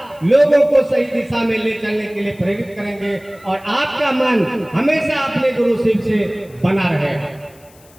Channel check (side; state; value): left; noise; hiss, 27 dB below the sound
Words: लोगों को सही दिशा में ले चलने के लिए प्रेरित करेंगे और आपका मन हमेशा अपने गुरु शिव से बना रहेगा।